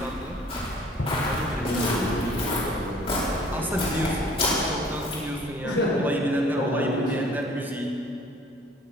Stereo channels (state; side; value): normal; both; correlation 0.53